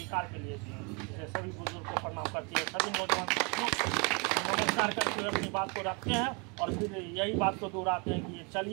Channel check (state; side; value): quieter; left; 30.8 dB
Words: के लिए दिए हैं। इसलिए सभी बुजुर्ग को प्रणाम करते हैं, सभी नौजवान साथियों नमस्कार करते हुए अपनी बात को रखते हैं और फिर यही बात को दोहराते हैं कि ये